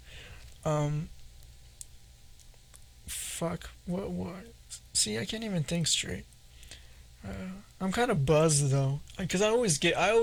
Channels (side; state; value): both; identical; correlation 1.00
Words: Fuck. What? See, I can't even think straight. I'm kind of buzzed though, because I